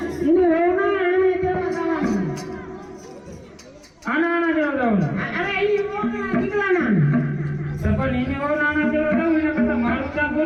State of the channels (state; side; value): identical; both; correlation 1.00